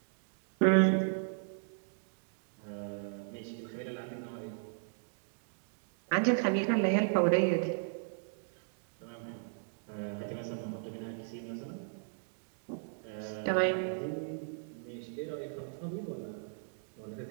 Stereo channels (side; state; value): left; silent; digital silence